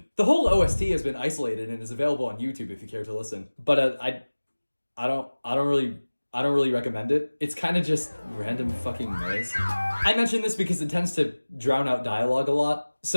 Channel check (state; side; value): inverted; both; correlation -1.00